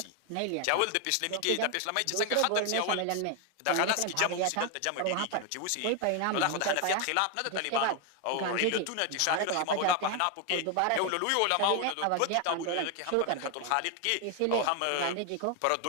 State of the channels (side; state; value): both; different; correlation 0.01